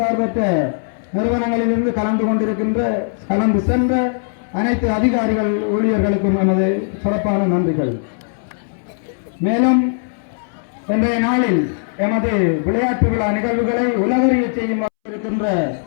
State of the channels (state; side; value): silent; right; 67 dB below the other